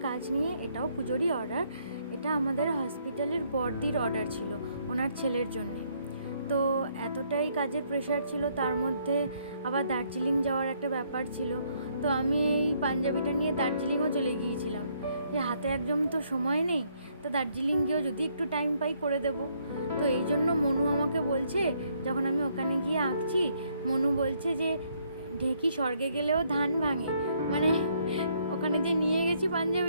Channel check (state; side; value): inverted; both; correlation -0.70